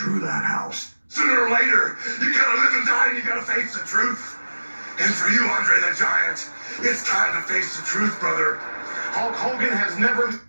that house. Sooner or later, you gotta live and die and you gotta face the truth. And for you, Andre the Giant, it's time to face the truth, brother. Hulk Hogan has never...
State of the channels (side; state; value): both; inverted; correlation -1.00